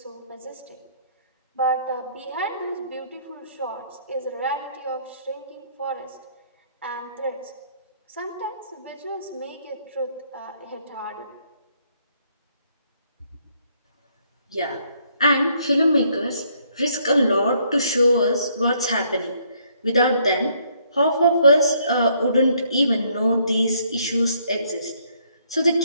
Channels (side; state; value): both; inverted; correlation -0.68